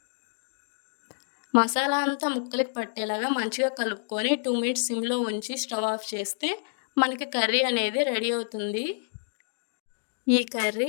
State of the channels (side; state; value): right; silent; digital silence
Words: మసాలా అంతా ముక్కలకి పట్టేలాగా మంచిగా కలుపుకొని 2 మినిట్స్ సిమ్‌లో ఉంచి స్టవ్ ఆఫ్ చేస్తే మనకి కర్రీ అనేది రెడీ అవుతుంది. ఈ కర్రీ